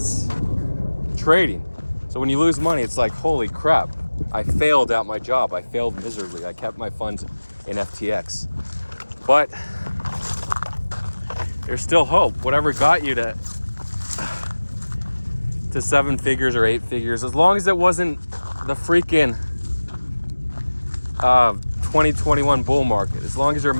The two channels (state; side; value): inverted; both; correlation -1.00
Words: trading. So when you lose money, it's like, holy crap, I failed at my job. I failed miserably. I kept my funds in FTX. But there's still hope. Whatever got you to 7 figures or 8 figures, as long as it wasn't the freaking 2021 bull market, as long as you're